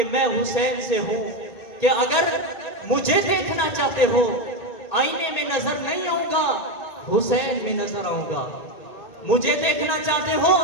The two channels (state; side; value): late; right; 2.2 ms